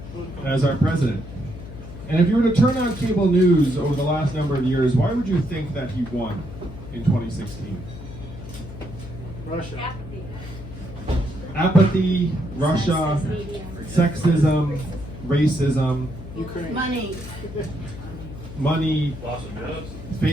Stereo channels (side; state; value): left; noise; hum, 13 dB below the sound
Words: as our president. And if you were to turn on cable news over the last number of years, why would you think that he won in 2016? Russia. Apathy, Russia, sexism, racism, Ukraine. money,